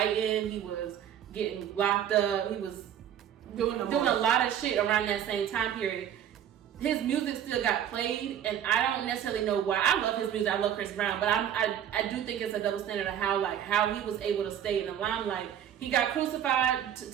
He was getting locked up. He was doing a lot of shit around that same time period. His music still got played, and I don't necessarily know why. I love his music. I love Chris Brown, but I do think it's a double standard of how he was able to stay in the limelight. He got crucified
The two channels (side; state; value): left; quieter; 9.9 dB